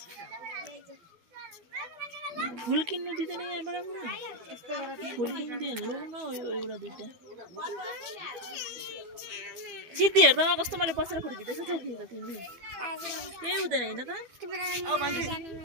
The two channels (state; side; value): late; left; 12 ms